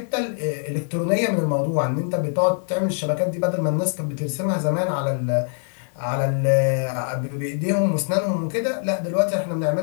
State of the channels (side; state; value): right; silent; 63 dB below the other